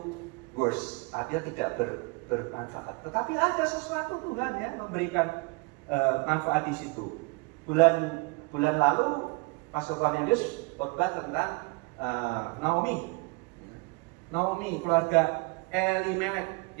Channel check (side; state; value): left; quieter; 28.6 dB